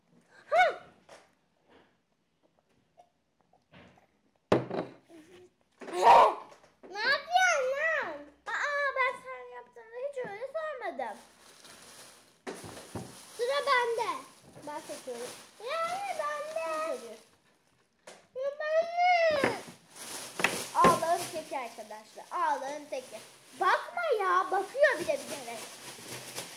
Ha! Ne yapıyorsun lan? Aa ben sen yaptığında hiç öyle sormadım. Sıra bende. Ben seçiyorum. Yani bende. Seçiyorum. Ya bende. Ağlağın teki arkadaşlar. Ağlağın teki. Bakma ya. Bakıyor bile bilerek.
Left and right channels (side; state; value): both; identical; correlation 1.00